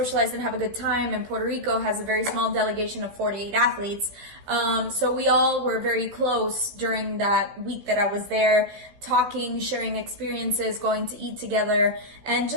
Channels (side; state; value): left; late; 15 ms